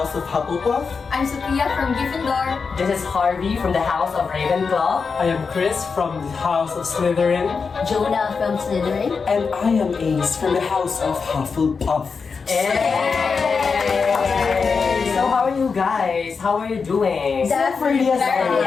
of Hufflepuff. I'm Sophia from Gryffindor. This is Harvey from the House of Ravenclaw. I am Chris from the House of Slytherin. Jonah from Slytherin. And I am Ace from the House of Hufflepuff. Hey! So how are you guys? How are you doing? Definitely. And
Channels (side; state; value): right; quieter; 5.2 dB